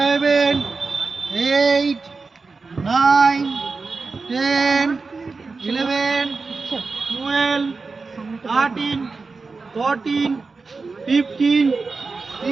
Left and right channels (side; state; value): left; quieter; 4.2 dB